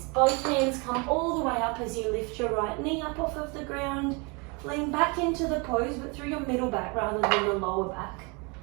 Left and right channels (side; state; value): left; quieter; 30.4 dB